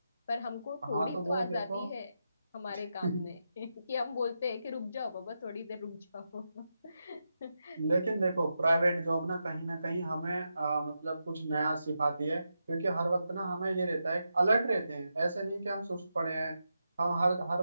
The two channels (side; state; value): both; inverted; correlation -0.87